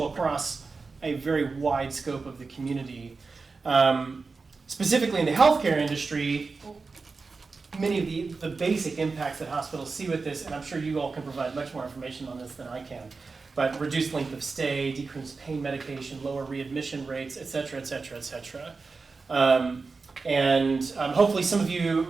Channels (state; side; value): quieter; left; 4.3 dB